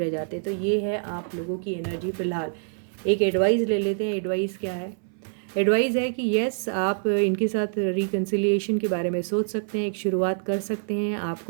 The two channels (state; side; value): silent; left; 61 dB below the other